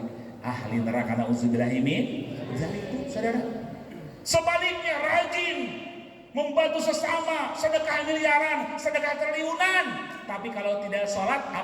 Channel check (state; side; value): identical; both; correlation 1.00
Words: ahli neraka, nauzubillah min dzalik, saudara. Sebaliknya rajin membantu sesama, sedekah miliaran, sedekah triliunan, tapi kalau tidak sholat,